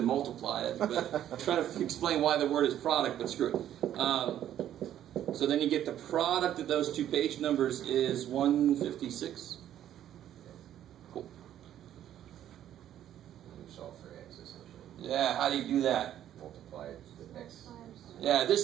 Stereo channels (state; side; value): quieter; left; 11.3 dB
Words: multiply it, but trying to explain why the word is product, but screw it. So then you get the product of those two page numbers is 156. Cool. You solve for x essentially. Yeah, how do you do that? Multiply the x. Yeah,